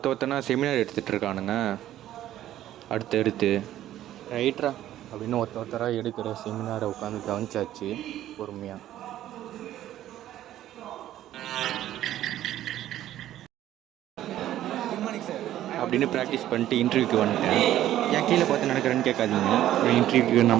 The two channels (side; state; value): left; quieter; 12.9 dB